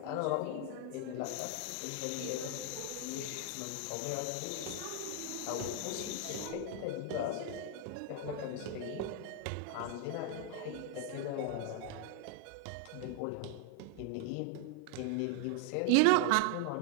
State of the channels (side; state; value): both; different; correlation 0.00